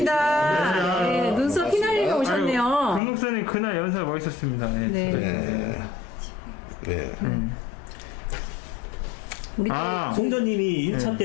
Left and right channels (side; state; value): right; drops out; at 3.0 s